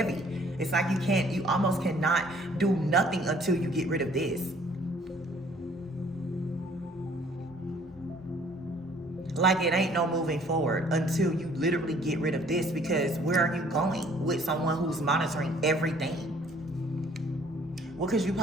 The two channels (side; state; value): both; normal; correlation 0.58